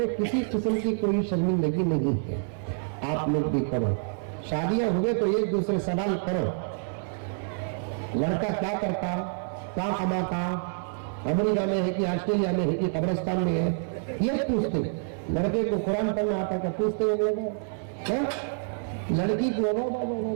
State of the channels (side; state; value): left; silent; 60 dB below the other